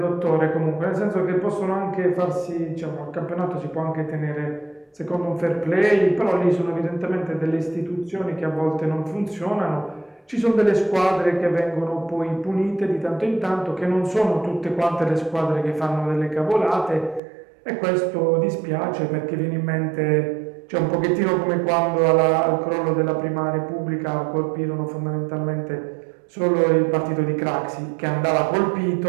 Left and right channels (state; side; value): drops out; left; at 17.2 s